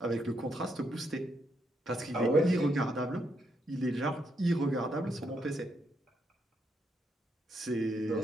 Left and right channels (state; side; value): normal; both; correlation 0.78